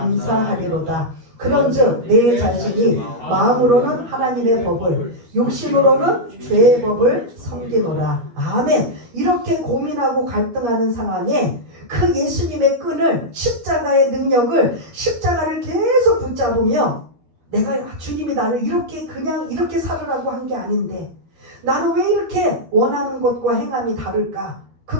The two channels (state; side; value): late; left; 12 ms